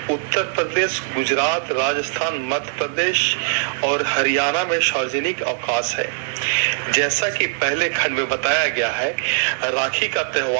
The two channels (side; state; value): left; silent; digital silence